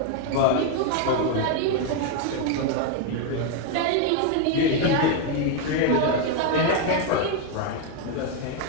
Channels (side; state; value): both; different; correlation 0.01